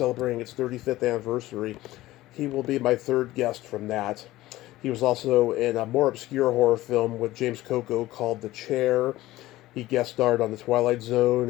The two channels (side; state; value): right; quieter; 16.7 dB